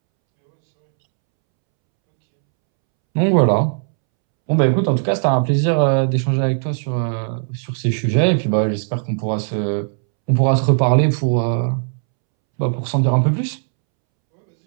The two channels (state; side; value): silent; left; 67 dB below the other